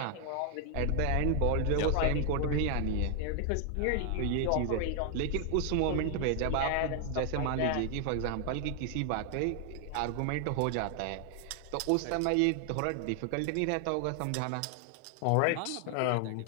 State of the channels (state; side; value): different; both; correlation 0.00